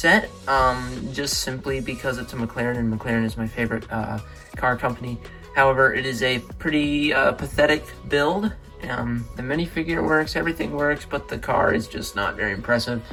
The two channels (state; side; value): identical; both; correlation 1.00